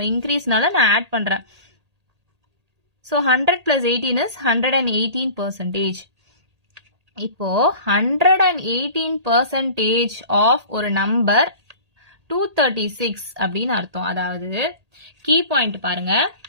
இன்க்ரீஸ்னால நான் ஆட் பண்றேன். So 100 + 18 is 118%. இப்போ 118% ஆஃப் ஒரு நம்பர் 236 அப்படின்னு அர்த்தம். அதாவது கீ பாயிண்ட் பாருங்க,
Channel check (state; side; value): late; left; 1.8 ms